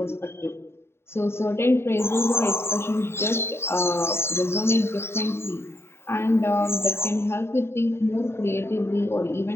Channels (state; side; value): late; right; 0.12 ms